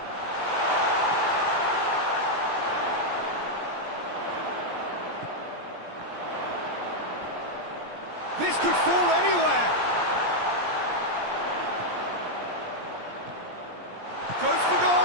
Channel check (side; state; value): left; late; 17 ms